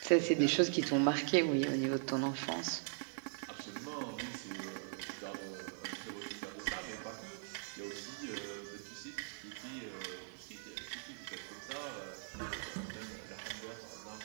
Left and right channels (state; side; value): silent; left; digital silence